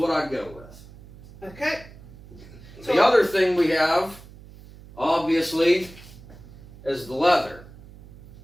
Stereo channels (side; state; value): right; noise; hum, 19 dB below the sound